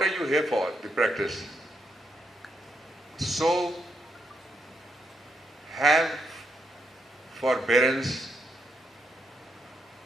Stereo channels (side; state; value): both; normal; correlation 0.79